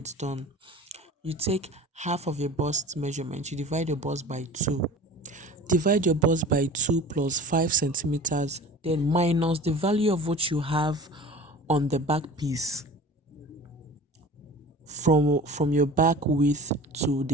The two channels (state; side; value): normal; both; correlation 0.40